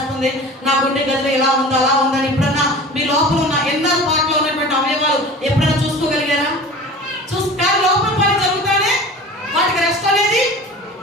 నా గుండె గదిలో ఇలా ఉందా అలా ఉందని ఎప్పుడన్నా మీ లోపల ఉన్న ఎన్నో పాటలో ఉన్నటువంటి అవయవాలు ఎప్పుడైనా చూసుకోగలిగారా? కానీ లోపల పని జరుగుతానే వాటికి రెస్ట్ అనేది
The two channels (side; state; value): both; normal; correlation 0.38